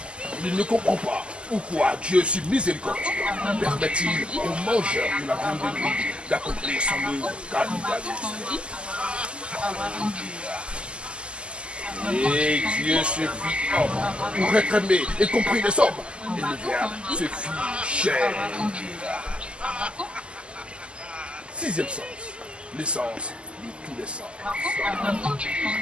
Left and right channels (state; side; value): late; left; 0.052 ms